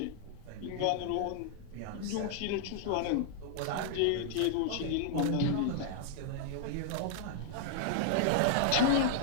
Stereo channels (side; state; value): both; different; correlation -0.01